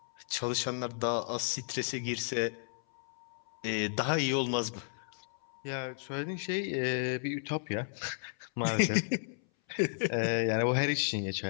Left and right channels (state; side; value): silent; right; 56 dB below the other